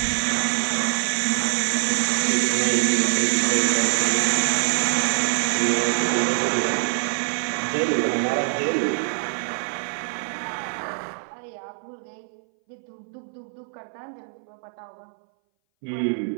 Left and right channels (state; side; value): silent; left; 60 dB below the other